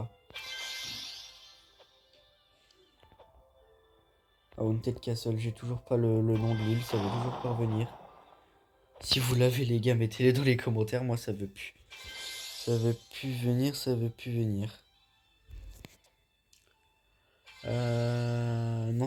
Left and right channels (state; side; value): identical; both; correlation 1.00